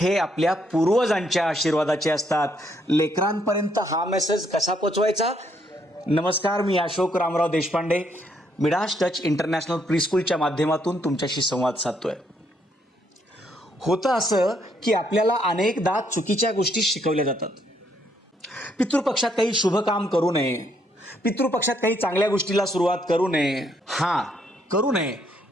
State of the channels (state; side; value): normal; both; correlation 0.72